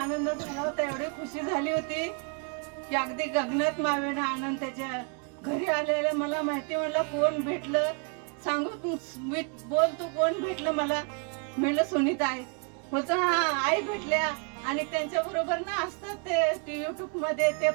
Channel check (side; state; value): left; quieter; 38.0 dB